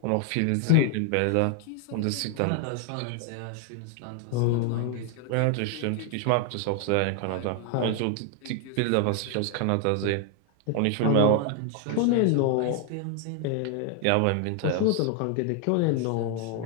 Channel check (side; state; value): both; different; correlation 0.00